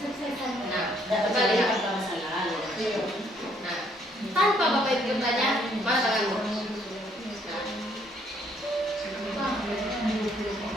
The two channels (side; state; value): both; normal; correlation 0.67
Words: Nah, kita lihat. apa Bapak Ibu bertanya? Mana tanganmu?